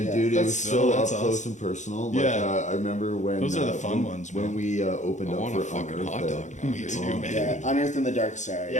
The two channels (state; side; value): late; right; 0.35 ms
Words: Yeah. dude, it That's was so- so up that's close awesome. and personal. Like, Yeah. I remember when Those are the fun when, ones, when man. we opened I up want for a fucking Unearthed. hot dog now. Me dude. too, man. Yeah, Unearthed in the Dark Side.